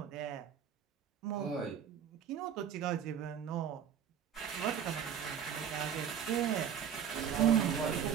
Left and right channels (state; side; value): quieter; left; 8.4 dB